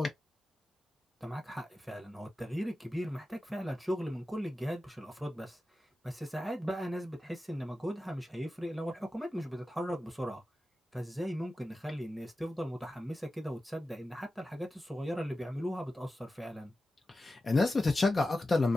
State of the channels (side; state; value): both; normal; correlation 0.93